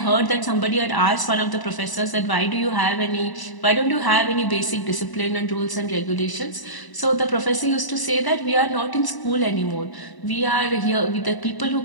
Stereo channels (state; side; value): late; right; 1.0 ms